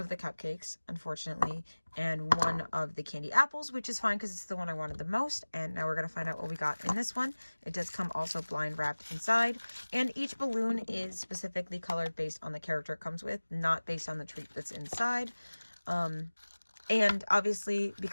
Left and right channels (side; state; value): both; inverted; correlation -1.00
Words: the cupcakes, unfortunately, and 1 of the candy apples, which is fine because it's the one I wanted the most. And now we're going to find out what we got in this one. It does come also blind wrapped inside. And each balloon is specifically colored based on the character it comes with, not based on the treat that's inside. And obviously,